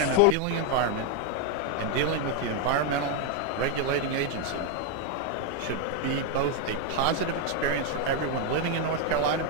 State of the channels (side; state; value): both; different; correlation 0.01